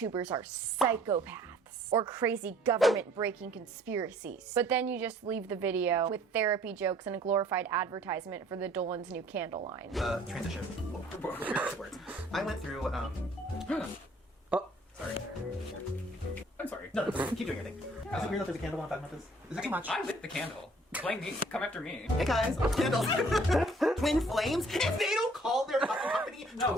are psychopaths or crazy government-breaking conspiracies. But then you just leave the video with therapy jokes and a glorified advertisement for the Dolan's new candle line. Transition. Words. I went through, Sorry. I'm sorry. No, keep doing your thing. Is it weird that there's a candle while I'm talking about this? Is it too much? I lit the candle. Blame me. Come after me. Hey guys, candles. Twin flames? If they don't call their fucking company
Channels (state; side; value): normal; both; correlation 0.57